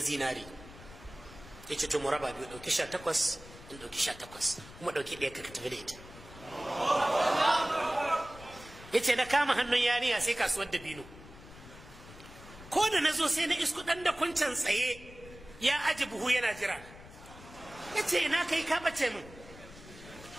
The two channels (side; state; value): left; noise; rumble, 18 dB below the sound